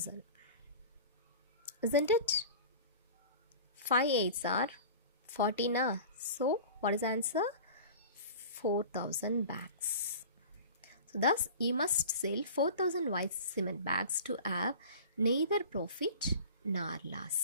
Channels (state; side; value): inverted; both; correlation -0.38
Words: Isn't it? 5 8s are 14. So what is the answer? 4,000 bags. So thus you must sell 4,000 white cement bags to have neither profit nor